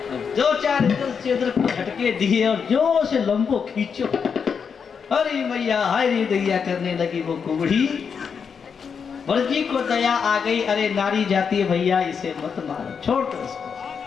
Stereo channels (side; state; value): right; quieter; 6.4 dB